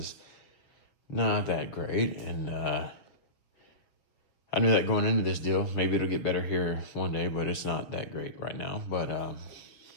not that great, and I knew that going into this deal. Maybe it'll get better here one day, but it's not that great right now. But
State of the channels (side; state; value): right; late; 6.8 ms